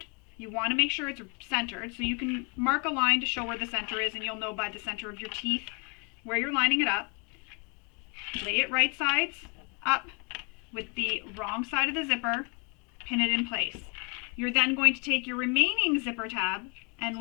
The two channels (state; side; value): quieter; right; 35.2 dB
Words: You want to make sure it's centered, so you can mark a line to show where the center is, and you'll know by the center of your teeth where you're lining it up. Lay it right sides up with the wrong side of the zipper, pin it in place. You're then going to take your remaining zipper tab and